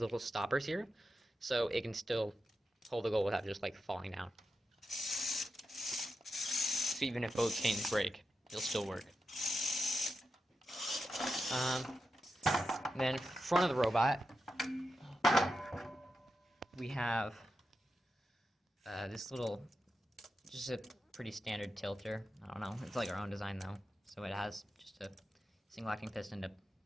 little stoppers here. So it can still hold the goal without just like falling down. So even if both chains break, it'll still work. Then front of the robot, we have this little, just a pretty standard tilter. I don't know, it's like our own design though. So it has just a single acting piston to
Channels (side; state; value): both; normal; correlation 0.89